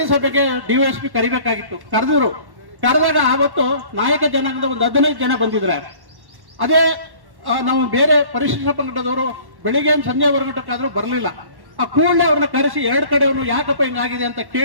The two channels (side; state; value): left; late; 1.1 ms